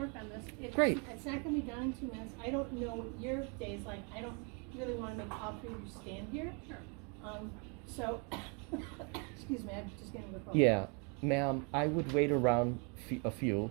on this. Great. It's not going to be done in 2 minutes. I don't know what your day's like. I don't really want to make all three of you stand here. So, excuse me, I'm just getting the phone. Yeah, ma'am, I would wait around a few.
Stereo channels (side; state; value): left; quieter; 35.3 dB